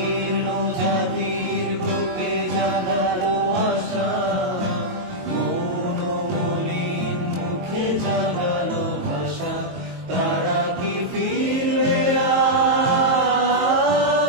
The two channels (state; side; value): late; left; 22 ms